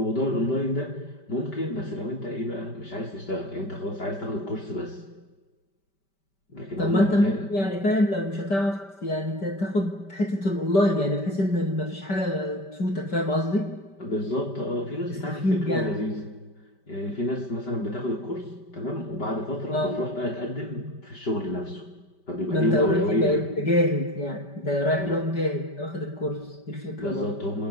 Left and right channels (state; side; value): late; right; 5.1 ms